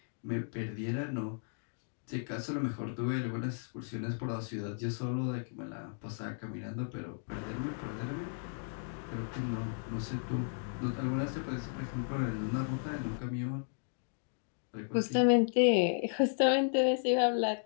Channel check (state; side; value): silent; right; digital silence